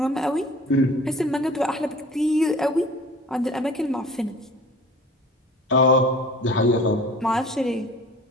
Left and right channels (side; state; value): both; normal; correlation 0.44